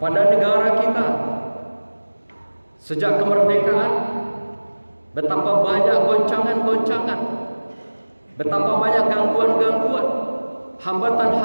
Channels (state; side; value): inverted; both; correlation -1.00